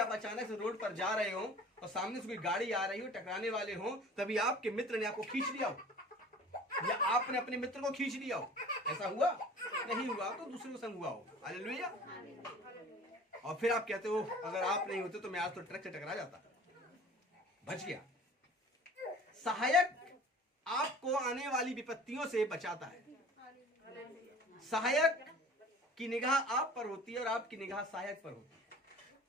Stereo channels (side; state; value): both; normal; correlation 0.45